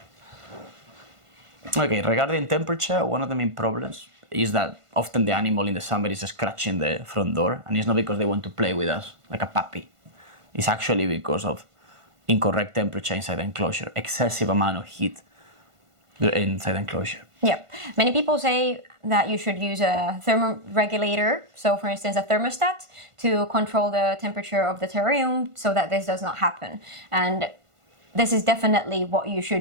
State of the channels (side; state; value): left; late; 1.5 ms